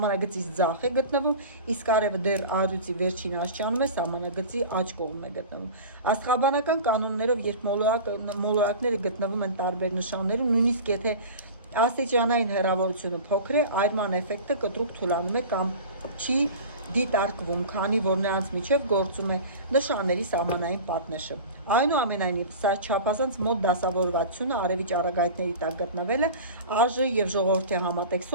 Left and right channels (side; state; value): both; inverted; correlation -0.36